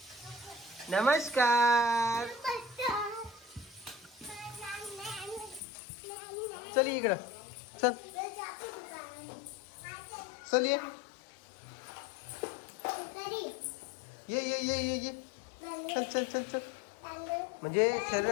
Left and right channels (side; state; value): right; drops out; at 5.6 s